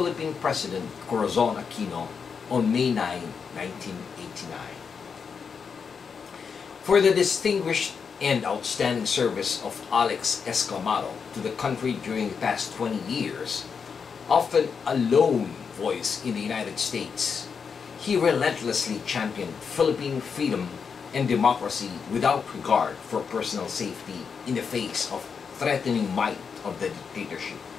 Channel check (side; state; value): right; quieter; 6.0 dB